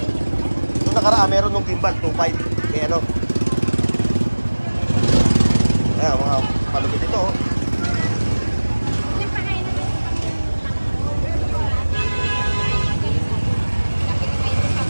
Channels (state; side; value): inverted; both; correlation -1.00